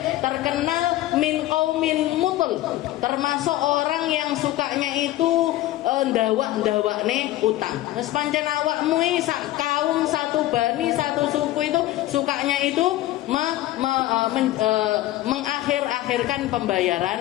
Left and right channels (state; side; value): quieter; right; 15.6 dB